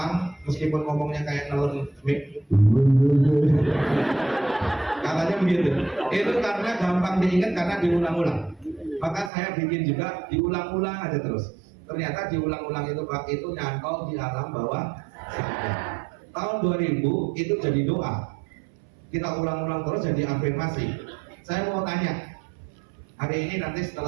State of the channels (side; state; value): left; drops out; at 9.3 s